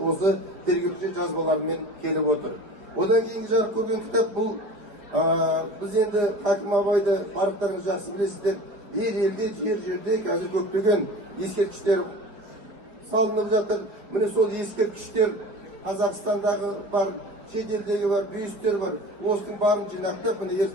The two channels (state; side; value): late; left; 5.0 ms